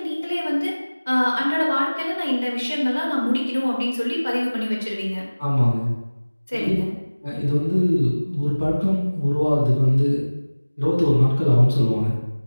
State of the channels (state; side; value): inverted; both; correlation -1.00